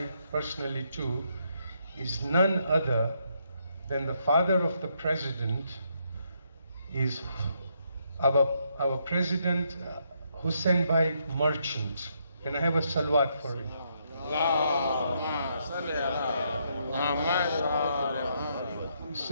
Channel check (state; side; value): inverted; both; correlation -0.75